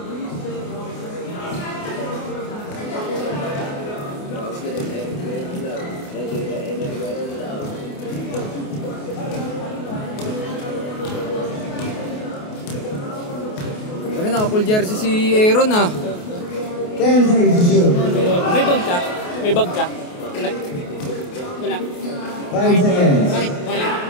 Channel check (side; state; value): right; late; 28 ms